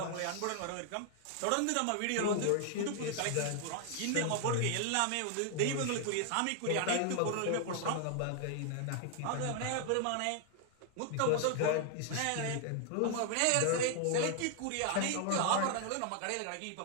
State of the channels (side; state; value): both; different; correlation 0.00